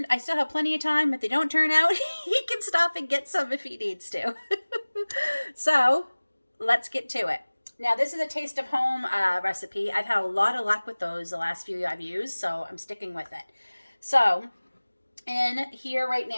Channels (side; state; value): both; inverted; correlation -1.00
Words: I still have plenty of time. If they don't turn out, he can stop and get some if he needs to. So let's get to it. Now, this is a Taste of Home recipe. I've had a lot of luck with those the last few I've used, so I'm sticking with it. So in here right